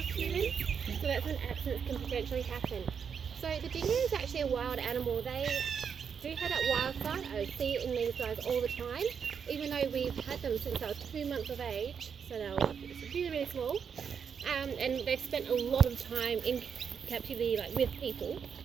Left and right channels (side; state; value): left; quieter; 6.9 dB